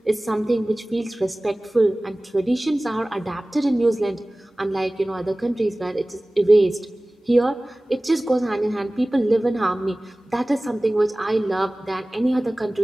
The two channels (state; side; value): normal; both; correlation 0.98